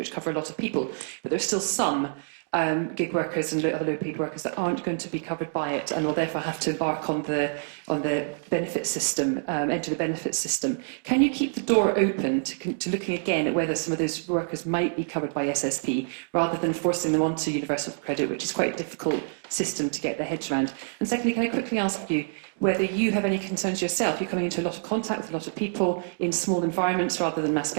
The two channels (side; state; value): left; silent; digital silence